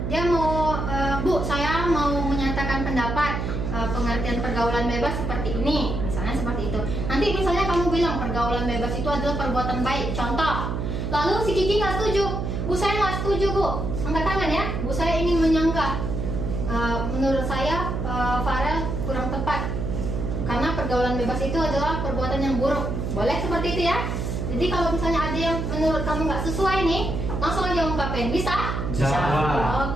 dia mau Bu, saya mau menyatakan pendapat pengertian pergaulan bebas seperti ini, misalnya seperti itu. Nanti misalnya kamu bilang pergaulan bebas itu adalah perbuatan baik, contoh. Lalu si Kiki nggak setuju, Bu saya nggak setuju Bu, angkat tangan ya, Bu saya ingin menyanggah. Menurut saya Farel kurang tepat, karena pergaulan bebas itu adalah perbuatan yang buruk. Boleh seperti itu ya. Jadi kalau misalnya ada yang menurut kamu nggak sesuai nih, langsung aja ungkapin, bisa? Bisa.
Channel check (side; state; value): right; noise; hum, 2 dB below the sound